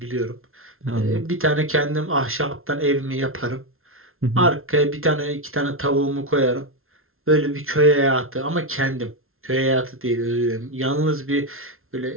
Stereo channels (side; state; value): left; late; 0.61 ms